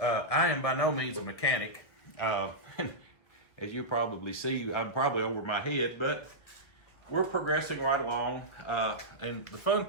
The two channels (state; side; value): late; right; 2.0 ms